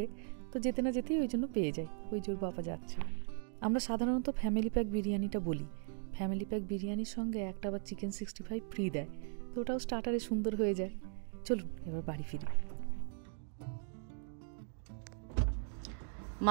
তো যেতে না যেতেই ওই জন্য পেয়ে যাই, ওই জোর বাবা যাচ্ছে। আমরা সাধারণত ফ্যামিলি প্যাক বিরিয়ানিটা বলি। ফ্যামিলি প্যাক বিরিয়ানির সঙ্গে একটা আবার চিকেন 65 ফ্রি দেয়, তো ওটাও স্টার্টারে সুন্দর হয়ে যায়। চলুন এবার বাড়ি ফিরি।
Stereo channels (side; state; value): left; silent; 52 dB below the other